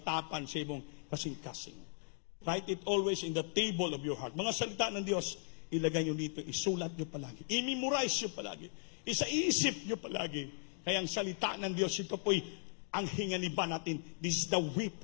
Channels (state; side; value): silent; right; 53 dB below the other